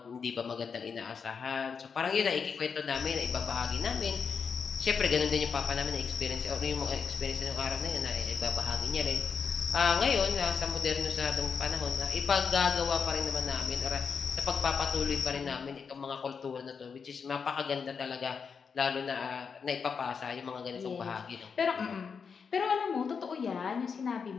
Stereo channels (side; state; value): right; quieter; 6.0 dB